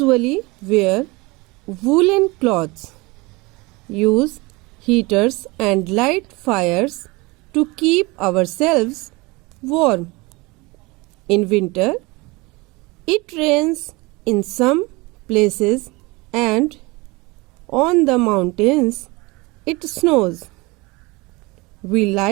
wear woolen cloths, use heaters and light fires to keep ourselves warm. In winter, it rains in some places and on the mountains it snows. We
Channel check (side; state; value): left; quieter; 24.4 dB